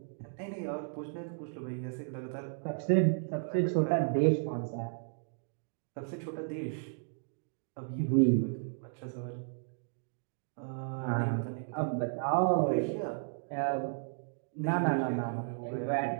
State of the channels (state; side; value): silent; left; digital silence